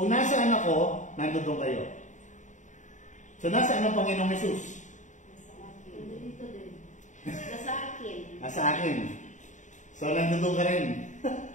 nasaan ako, nandun kayo. So, nasaan ang Panginoong Jesus? Dito din. Nasa akin. Nasa akin. So, nandun ka rin.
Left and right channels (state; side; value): late; right; 0.36 ms